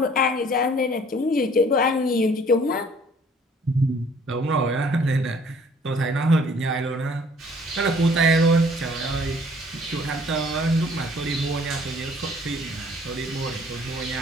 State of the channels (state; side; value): normal; both; correlation 0.56